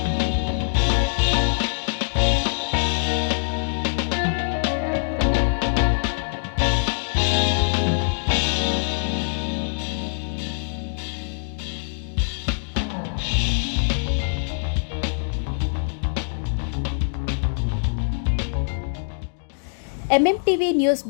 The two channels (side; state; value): right; silent; digital silence